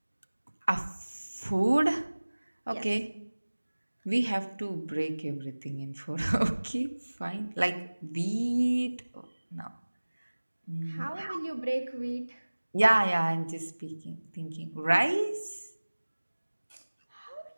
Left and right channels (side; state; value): both; inverted; correlation -1.00